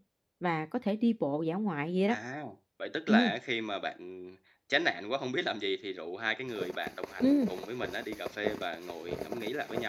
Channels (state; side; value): identical; both; correlation 1.00